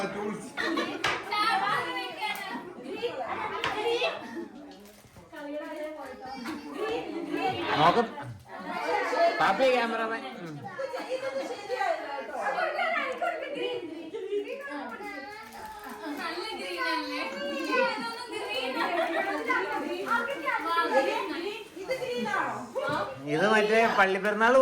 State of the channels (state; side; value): identical; both; correlation 1.00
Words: ടൂൾസ് നോക്കും. പാപ്പി ക്യാമറമാൻ. ഇത് മറ്റേ പള്ളിപ്പെരുന്നാള്